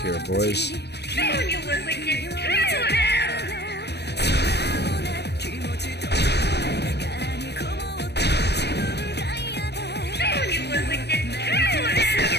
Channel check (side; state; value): right; late; 0.49 ms